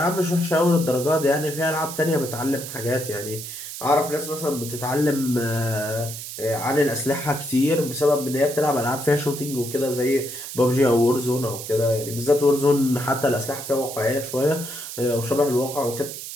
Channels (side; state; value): right; noise; hiss, 9 dB below the sound